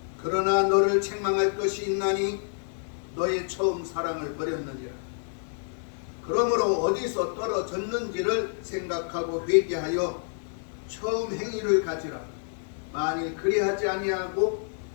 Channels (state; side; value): silent; right; digital silence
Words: 그러나 너를 책망할 것이 있나니 너의 처음 사랑을 버렸느니라. 그러므로 어디서 떨어졌는지를 생각하고 회개하여 처음 행위를 가지라. 만일 그리하지 아니하고